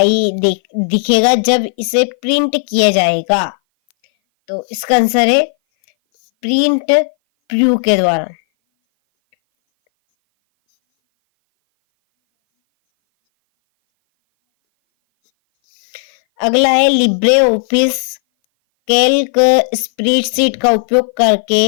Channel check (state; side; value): silent; right; 58 dB below the other